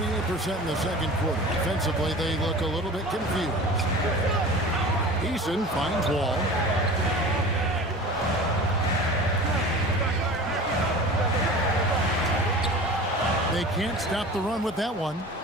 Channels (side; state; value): both; normal; correlation 0.37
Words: in the second quarter. Defensively, they look a little bit confused. Eason finds Wall. They can't stop the run with that one.